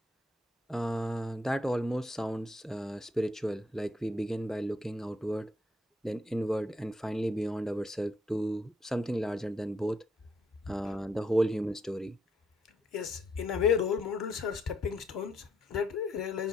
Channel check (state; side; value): normal; both; correlation 0.74